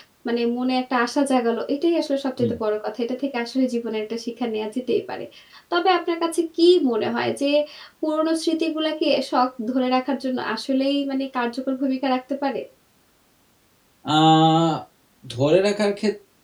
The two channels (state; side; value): identical; both; correlation 1.00